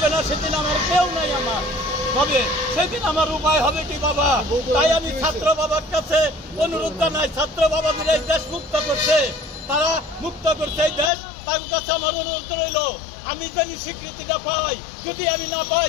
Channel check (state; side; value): drops out; right; at 11.1 s